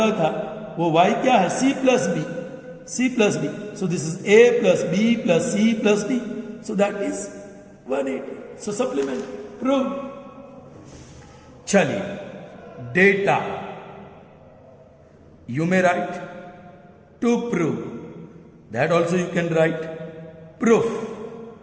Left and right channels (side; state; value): both; identical; correlation 1.00